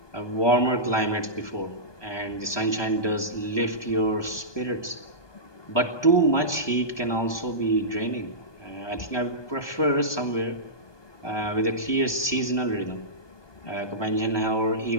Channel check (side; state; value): right; late; 1.2 ms